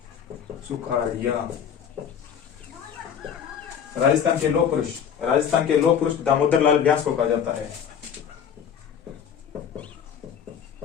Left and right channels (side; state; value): right; quieter; 8.1 dB